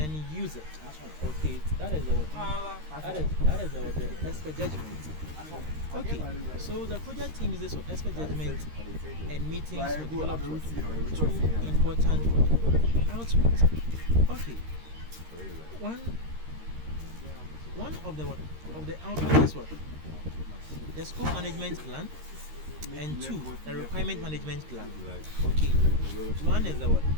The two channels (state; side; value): late; left; 13 ms